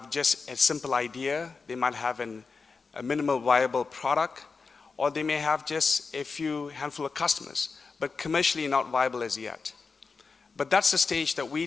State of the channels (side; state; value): right; quieter; 4.7 dB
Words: just a simple idea. They might have a minimal viable product, or they may have just a few handful of customers, but commercially not viable as yet. But that's the stage that we